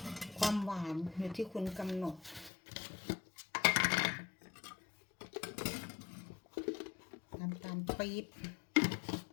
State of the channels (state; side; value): drops out; right; at 2.5 s